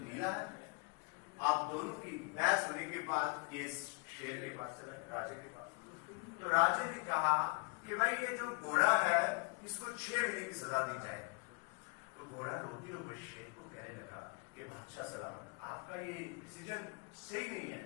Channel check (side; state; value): right; quieter; 34.2 dB